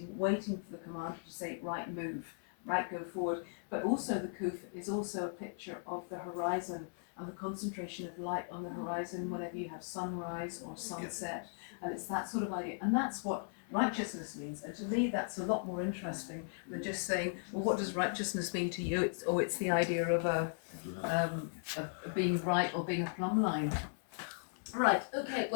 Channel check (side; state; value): right; silent; 53 dB below the other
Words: waiting for the commander to say, right, move, right, go forward. But also the kuf is also a picture of the horizon and the concentration of light on the horizon whenever you have sunrise or sunset. And it's that sort of idea. And that's what righteousness means. And to me, that's a lot more interesting than just saying, well, what does righteousness mean to you? It's the idea of being right or being a plumb line. Right, okay,